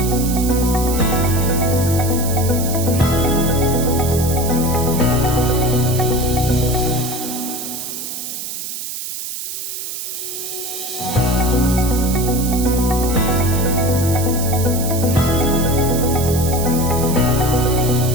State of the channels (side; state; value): right; noise; hiss, 7 dB below the sound